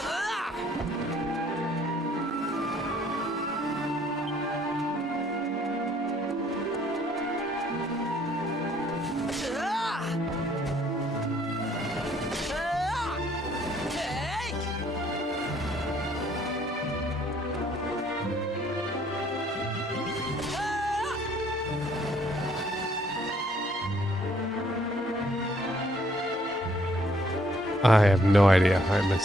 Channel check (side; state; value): both; normal; correlation 0.64